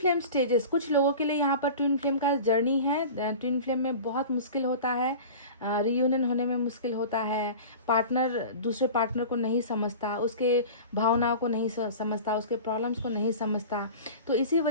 स्टेजेस, कुछ लोगों के लिए यहाँ पर ट्विन फ्लेम का जर्नी है। ट्विन फ्लेम में बहुत मुश्किल होता है, रियूनियन होने में मुश्किल होता है। पार्टनर दूसरे पार्टनर को नहीं समझता, उसके भावनाओं को नहीं समझता, उसके प्रॉब्लम्स को नहीं समझता। तो इसी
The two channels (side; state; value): both; inverted; correlation -0.35